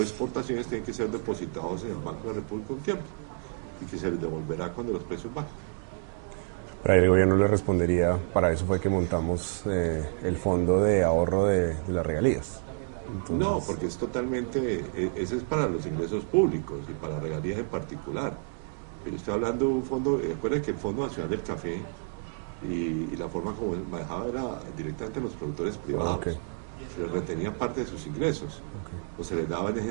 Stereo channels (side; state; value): left; silent; 58 dB below the other